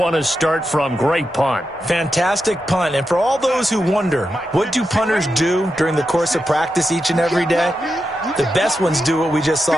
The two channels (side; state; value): both; normal; correlation 0.88